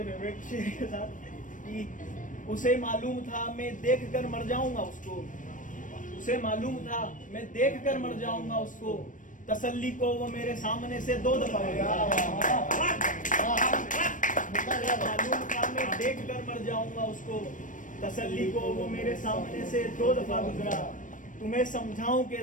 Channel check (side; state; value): right; late; 0.38 ms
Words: फेवरेट शेर के साथ कि उसे मालूम था मैं देख कर मर जाऊंगा उसको, उसे मालूम था मैं देख कर मर जाऊंगा उसको, तसल्ली को वो मेरे सामने से 2 दफा मालूम था मैं देख कर मर जाऊंगा उसको, तसल्ली को वो मेरे सामने से 2 दफा गुजरा। तुम्हें समझाऊं